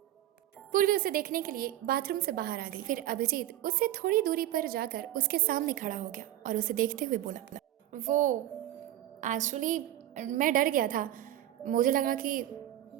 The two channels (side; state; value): left; quieter; 13.3 dB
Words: पूर्वी उसे देखने के लिए बाथरूम से बाहर आ गई। फिर अभिजीत उससे थोड़ी दूरी पर जाकर उसके सामने खड़ा हो गया और उसे देखते हुए बोला, वो एक्चुअली मैं डर गया था, मुझे लगा कि